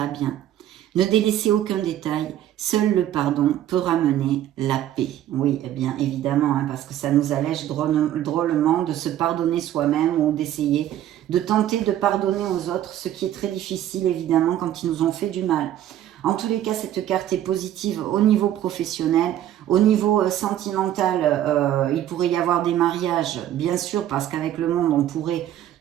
bien. Ne délaissez aucun détail. Seul le pardon peut ramener la paix. Oui, eh bien évidemment, hein, parce que ça nous allège drôlement de se pardonner soi-même ou d'essayer de tenter de pardonner aux autres, ce qui est très difficile évidemment quand ils nous ont fait du mal. En tous les cas, cette carte est positive au niveau professionnel. Au niveau sentimental, il pourrait y avoir des mariages, bien sûr, parce qu'avec le monde, on pourrait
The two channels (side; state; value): left; quieter; 11.9 dB